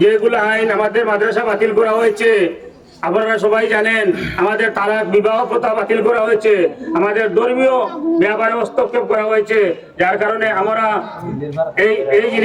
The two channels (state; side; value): identical; both; correlation 1.00